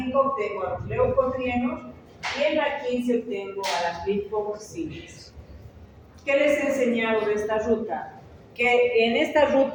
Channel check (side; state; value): both; identical; correlation 1.00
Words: obtengo a los leucotrienos y en la 15 obtengo a las lipoxinas. ¿Qué les he enseñado de esta ruta? Que en esta